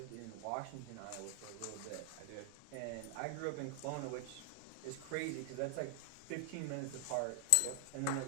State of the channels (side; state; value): both; different; correlation 0.00